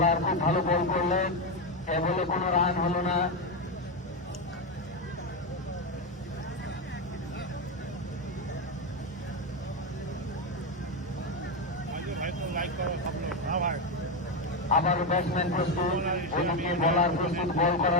খুব ভালো বল করলেন। এ বলে কোনো রান হলো না। ভাই তো লাইক করো সব লোক হ্যাঁ ভাই আবার ব্যাটসম্যান প্রস্তুত, ওদিকে বোলার প্রস্তুত বল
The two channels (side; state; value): both; normal; correlation 0.09